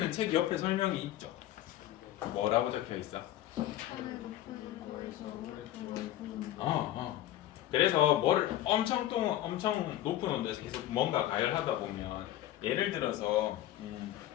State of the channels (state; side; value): quieter; right; 13.4 dB